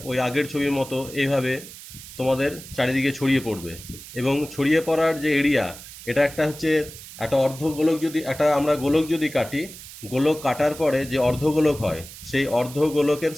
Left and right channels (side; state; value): right; noise; hiss, 15 dB below the sound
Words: ওই আগের ছবির মতো এইভাবে তোমাদের চারিদিকে ছড়িয়ে পড়বে। এবং ছড়িয়ে পড়ার যে এরিয়া, এটা একটা অর্ধগোলক, আমরা গোলক যদি কাটি, গোলক কাটার পরে যে অর্ধগোলক হয় সেই অর্ধগোলকের